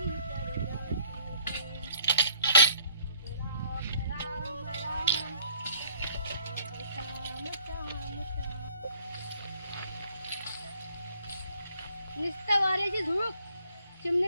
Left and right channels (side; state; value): both; inverted; correlation -0.60